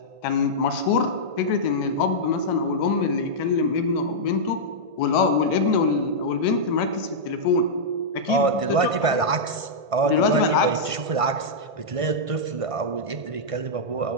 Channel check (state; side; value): late; left; 1.5 ms